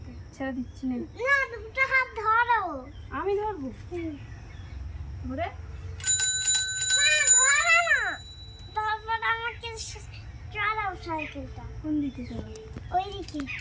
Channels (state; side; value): identical; both; correlation 1.00